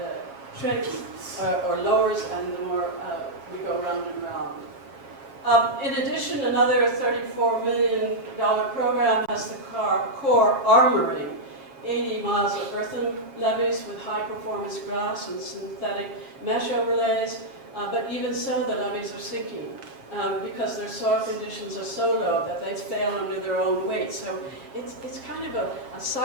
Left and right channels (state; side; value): late; left; 7.3 ms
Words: shrinks or lowers, and the more we go round and round. In addition, another $34 million program has the Corps armoring 80 miles of earthen levees with high-performance grass and synthetic mesh overlays, but even so, the levees are sinking because their soil conditions are so low that they fail under their own weight. So it's kind of a